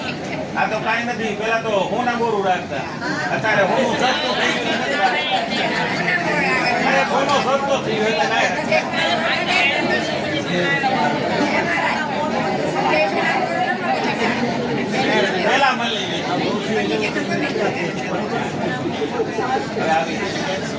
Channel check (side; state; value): both; identical; correlation 1.00